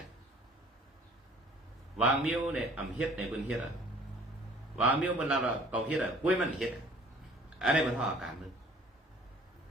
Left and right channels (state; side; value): normal; both; correlation 0.53